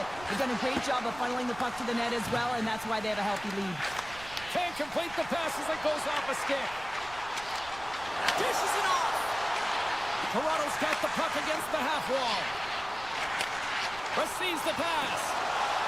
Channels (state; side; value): noise; right; rumble, 18 dB below the sound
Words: They've done a great job of funneling the puck to the net as well, and that's why they have a healthy lead. Can't complete the pass as it goes off a stick. Dishes it off. Toronto's got the puck against the half wall. Receives the pass.